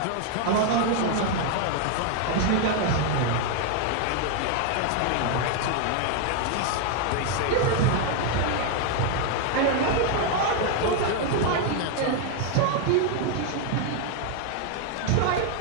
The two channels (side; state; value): both; different; correlation 0.01